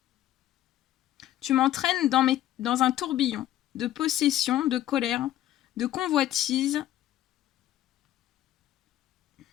Tu m'entraînes dans un tourbillon de possession, de colère, de convoitise,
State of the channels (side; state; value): right; quieter; 13.2 dB